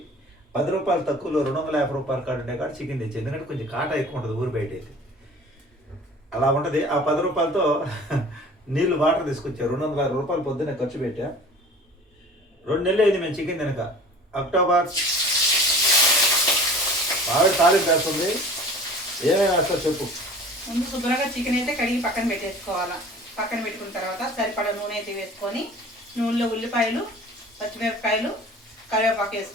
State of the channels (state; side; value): normal; both; correlation 0.44